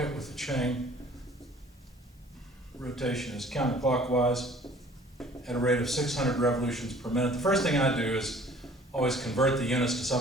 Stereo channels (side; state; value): both; normal; correlation 0.52